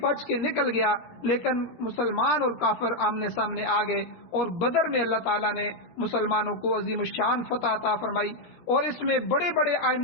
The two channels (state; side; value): late; right; 17 ms